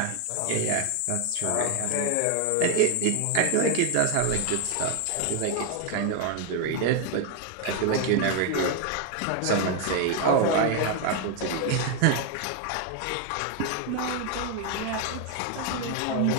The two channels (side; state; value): both; different; correlation 0.01